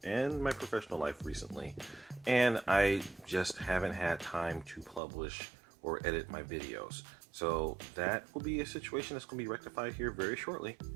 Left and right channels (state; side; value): drops out; left; at 5.0 s